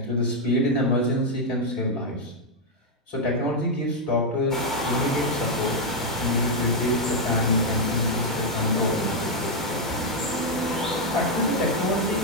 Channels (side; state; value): both; normal; correlation -0.01